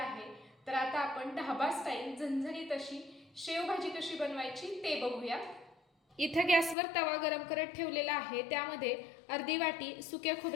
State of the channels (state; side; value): drops out; right; at 6.8 s